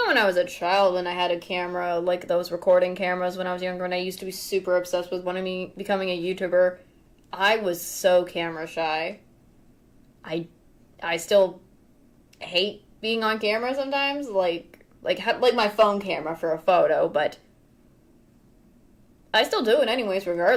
when I was a child, when I had a camera, like those recording cameras when I was younger, and I used to be super obsessed with becoming a YouTuber, I was so camera shy. I still hate being on camera sometimes, like my phone camera for a photo, but I still do it anyways,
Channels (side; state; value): both; identical; correlation 1.00